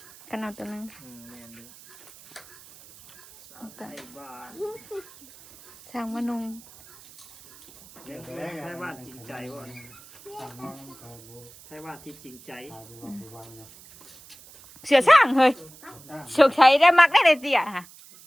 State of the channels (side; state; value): right; noise; hiss, 22 dB below the sound